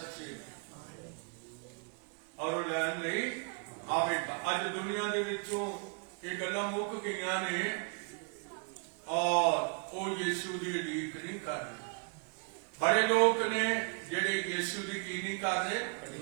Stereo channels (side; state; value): left; quieter; 36.8 dB